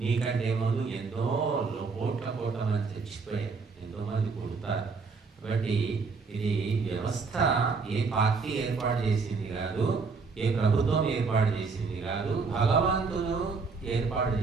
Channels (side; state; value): left; quieter; 4.7 dB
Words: ముందు ఎంతో కోట్ల మంది చచ్చిపోయారు, ఎంతో మంది పుడతారు. కాబట్టి ఇది వ్యవస్థ ఏ పార్టీ ఏర్పాటు చేసింది కాదు, ఏ ప్రభుత్వం ఏర్పాటు చేసింది కాదు, భగవంతుడు ఏర్పాటు